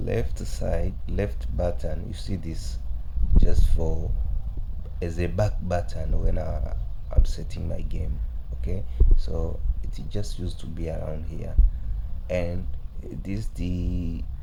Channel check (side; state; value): both; identical; correlation 1.00